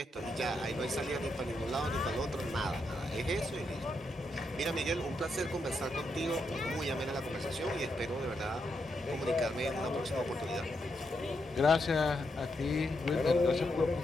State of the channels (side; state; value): both; normal; correlation 0.81